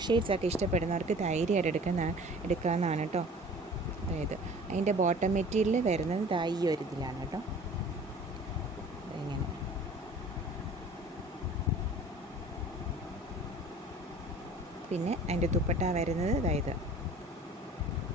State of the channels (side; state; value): both; normal; correlation 0.45